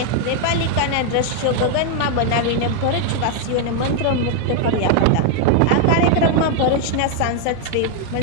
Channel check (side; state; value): both; different; correlation 0.01